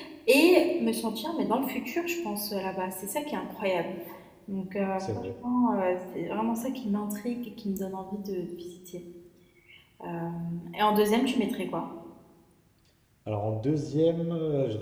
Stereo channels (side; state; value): both; identical; correlation 1.00